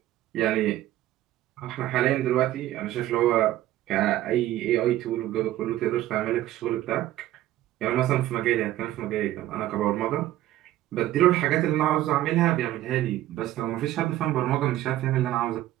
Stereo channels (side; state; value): left; quieter; 14.4 dB